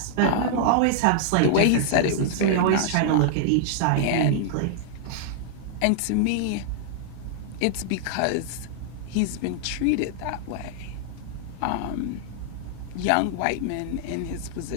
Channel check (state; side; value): different; both; correlation -0.01